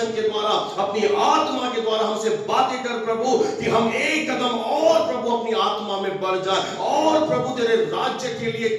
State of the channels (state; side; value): identical; both; correlation 1.00